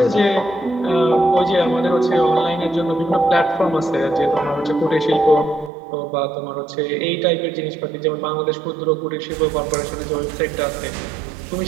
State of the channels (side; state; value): left; drops out; at 5.7 s